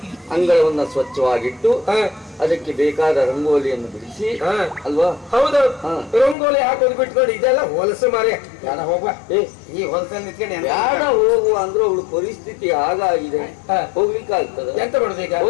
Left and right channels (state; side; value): drops out; right; at 6.4 s